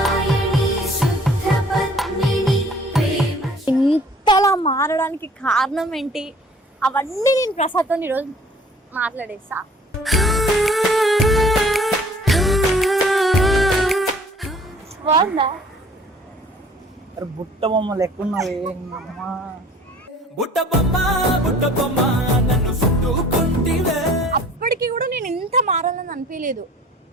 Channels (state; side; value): normal; both; correlation 0.52